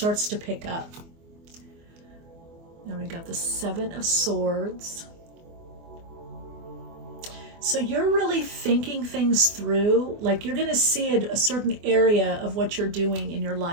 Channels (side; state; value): left; late; 24 ms